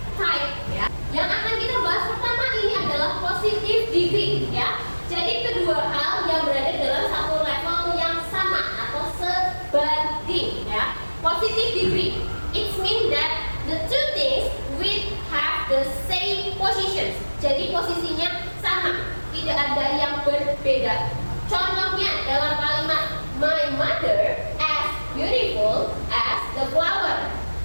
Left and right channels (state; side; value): inverted; both; correlation -1.00